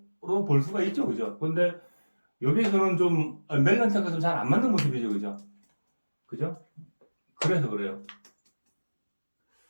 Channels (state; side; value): inverted; both; correlation -1.00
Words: 볼 수가 있죠, 그죠? 근데 여기서는 좀 멜란타가 좀 잘 안 맞는 모습이죠, 그죠? 그래서 그래요.